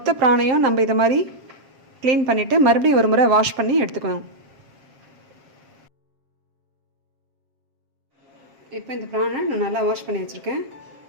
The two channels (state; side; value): late; left; 7.4 ms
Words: பிராணையும் நம்ம இதை மாதிரி க்ளீன் பண்ணிவிட்டு மறுபடியும் ஒரு முறை வாஷ் பண்ணி எடுத்துக்கணும். இப்போ இந்த ப்ரானை நான் நல்லா வாஷ் பண்ணி வச்சுருக்கேன்.